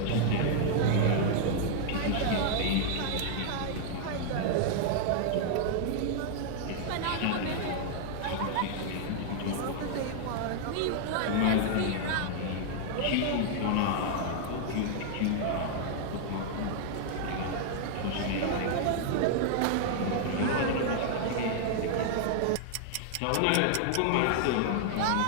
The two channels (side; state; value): both; different; correlation 0.00